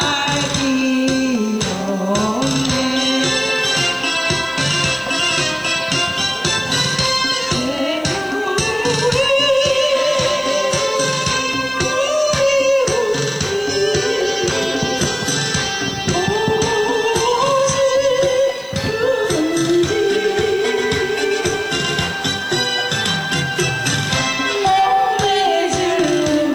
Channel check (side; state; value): left; noise; hiss, 28 dB below the sound